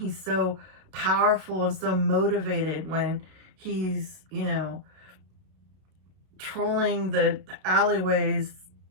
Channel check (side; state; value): left; late; 32 ms